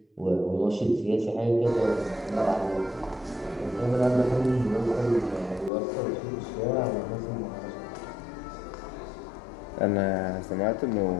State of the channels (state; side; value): drops out; right; at 5.7 s